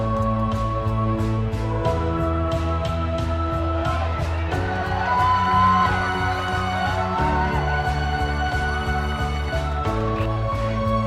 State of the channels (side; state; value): both; identical; correlation 1.00